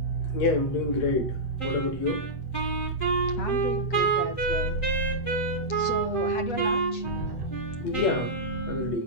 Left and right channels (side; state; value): right; late; 8.2 ms